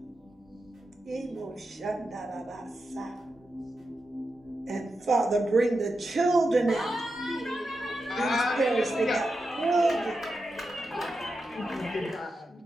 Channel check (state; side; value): normal; both; correlation 0.89